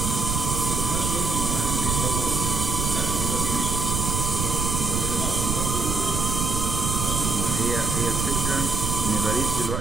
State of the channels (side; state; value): right; noise; rumble, 1 dB below the sound